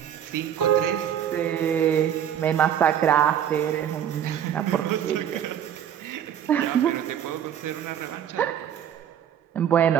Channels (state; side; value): quieter; left; 9.6 dB